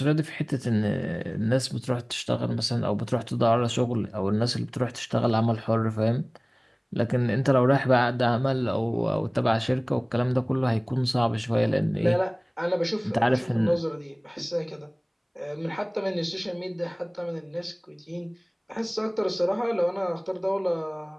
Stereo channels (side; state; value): both; identical; correlation 1.00